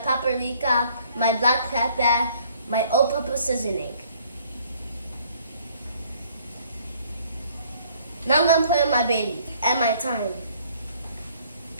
my black pepper, my all-purpose seasoning. Now I'm going to put in my bay leaf and my thyme.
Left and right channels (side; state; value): both; inverted; correlation -0.60